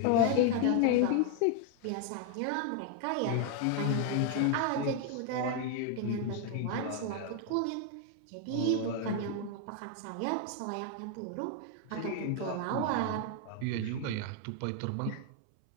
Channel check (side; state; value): both; different; correlation 0.01